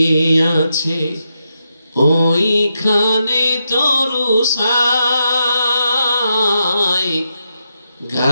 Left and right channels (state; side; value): inverted; both; correlation -0.84